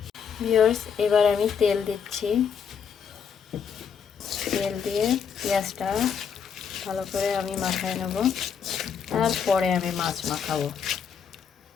ভিউয়ার্স এবার আমি তেল দিচ্ছি, তেল দিয়ে পেঁয়াজটা ভালো করে আমি মাখায় নেব, তারপরে আমি মাছ মাখাবো।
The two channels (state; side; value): quieter; right; 7.0 dB